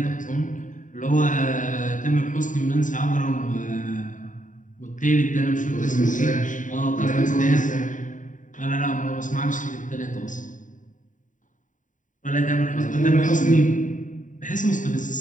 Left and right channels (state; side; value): late; right; 0.37 ms